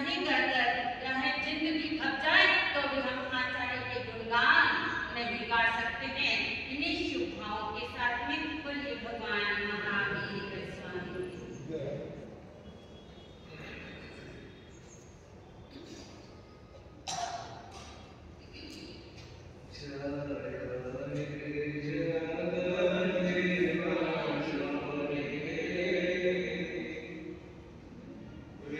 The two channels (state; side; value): identical; both; correlation 1.00